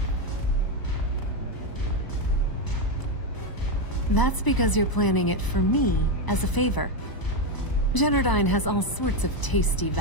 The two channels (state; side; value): late; right; 1.0 ms